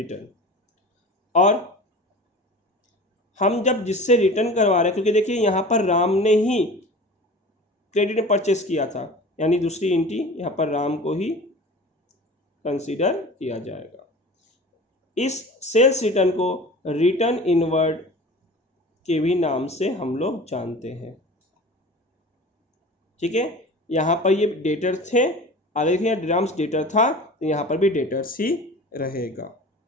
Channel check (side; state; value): both; normal; correlation 0.38